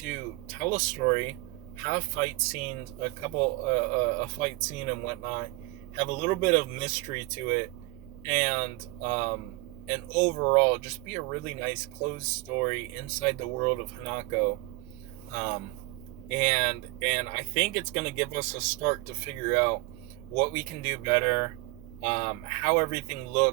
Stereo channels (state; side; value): quieter; left; 22.1 dB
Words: tell a story, have fight scenes, a fight scene and whatnot, have a little bit of mystery to it, and overall just be a really nice closed story inside the world of Hanako. Um, and I think it's going to give us a start to figure out what we can do better, how everything